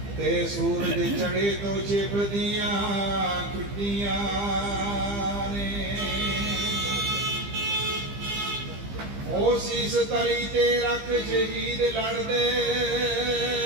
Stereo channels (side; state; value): left; late; 15 ms